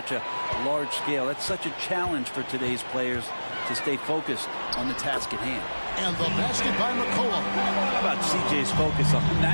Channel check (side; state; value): both; inverted; correlation -1.00